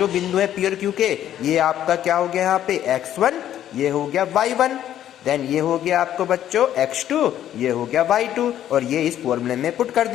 बिंदु है P और Q के, ये आपका क्या हो गया यहाँ पे x1, ये हो गया y1, देन ये हो गया आपको बच्चों x2, ये हो गया y2, और ये इस फॉर्मूले में पुट कर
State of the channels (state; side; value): quieter; right; 11.3 dB